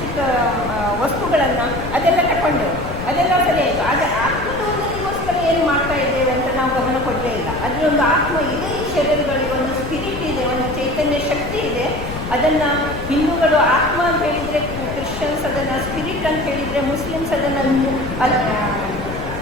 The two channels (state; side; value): noise; left; rumble, 9 dB below the sound